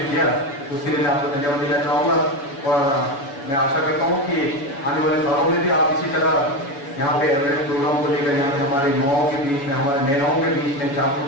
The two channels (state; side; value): late; right; 7.1 ms